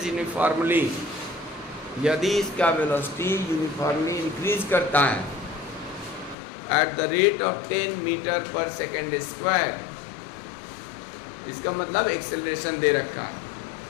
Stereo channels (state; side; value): drops out; right; at 6.4 s